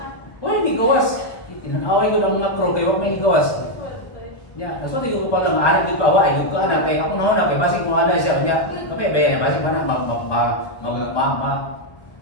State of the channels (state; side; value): late; right; 1.3 ms